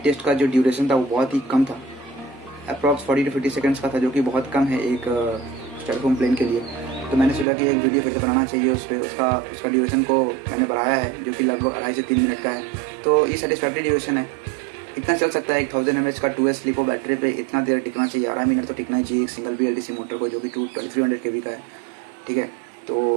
टेस्ट का जो ड्यूरेशन था वो बहुत ही कम था। अप्रॉक्स 40 to 50 सेकंड्स का था, जो कि बहुत कम है एक स्टायरोफोम प्लेन के लिए। तो मैंने सोचा कि एक वीडियो फिर से बनाना चाहिए उस पर। उसका ड्यूरेशन को मैंने बढ़ाया है, जो कि लगभग 2.5 से 3 मिनट का है। तो ये सेटिस्फैक्ट्री ड्यूरेशन है, इतना चल सकता है। एक 1000 mAh का 2S लिपो बैटरी पे इतना देर टिकना चाहिए, 12 मिनट तो टिकना ही चाहिए एक सिंगल BLDC मोटर को, जो कि 2300 kV का है। ठीक है,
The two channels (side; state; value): left; drops out; at 7.5 s